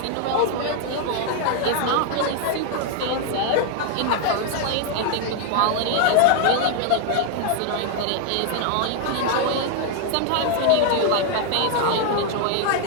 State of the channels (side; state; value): both; different; correlation 0.00